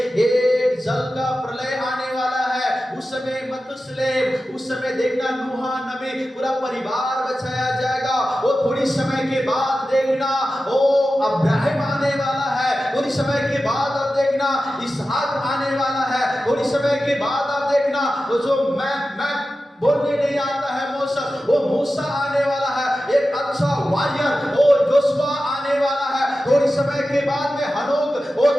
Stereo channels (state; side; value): normal; both; correlation 0.94